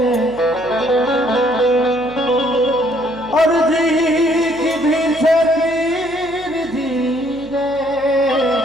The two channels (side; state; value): right; noise; hum, 22 dB below the sound